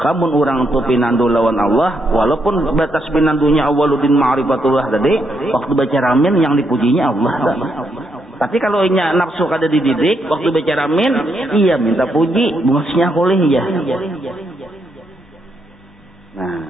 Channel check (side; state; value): both; normal; correlation 0.78